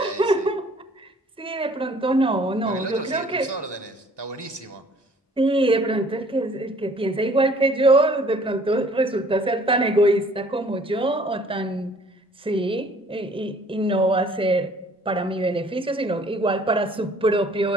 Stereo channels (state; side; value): normal; both; correlation 0.56